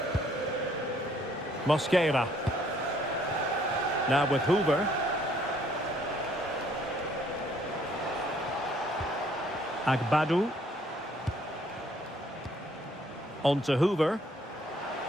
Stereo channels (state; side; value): normal; both; correlation 0.64